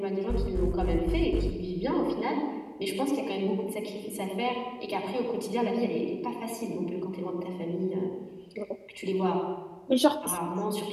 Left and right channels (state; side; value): identical; both; correlation 1.00